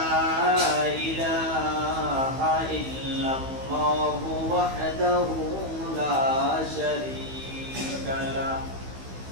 إله إلا الله وحده لا شريك له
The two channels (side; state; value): left; late; 15 ms